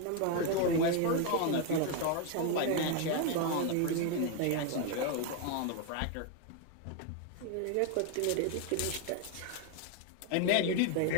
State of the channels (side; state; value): both; different; correlation 0.01